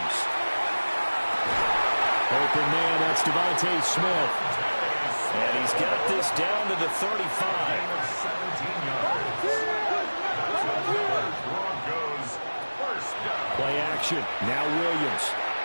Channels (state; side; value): inverted; both; correlation -1.00